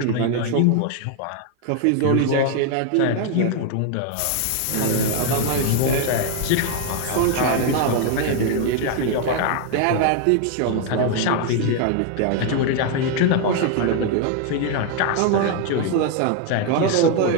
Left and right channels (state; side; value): different; both; correlation 0.01